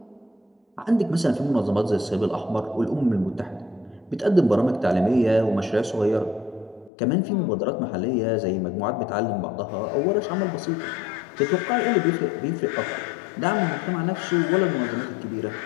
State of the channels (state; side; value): drops out; right; at 6.9 s